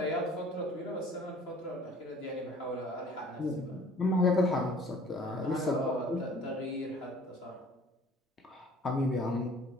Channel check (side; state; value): both; normal; correlation 0.51